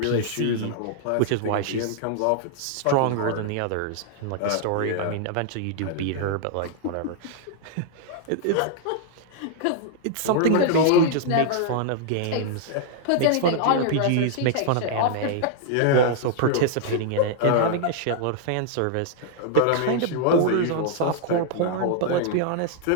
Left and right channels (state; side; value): different; both; correlation -0.01